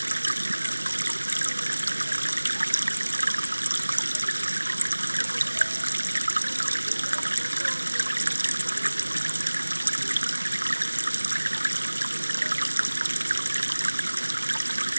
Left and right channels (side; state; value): both; inverted; correlation -1.00